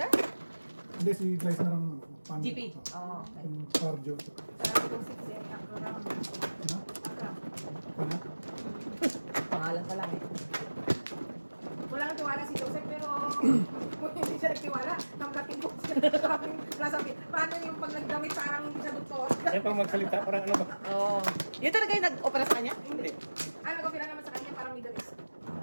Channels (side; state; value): both; inverted; correlation -1.00